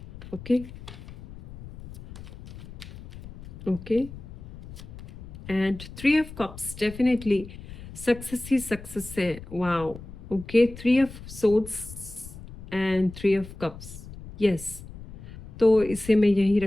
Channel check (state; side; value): noise; left; rumble, 14 dB below the sound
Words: Okay okay and 3 of cups, definitely success ही सक्सेस है। Wow, okay. 3 of swords and 3 of cups, yes. तो इसे मैं यही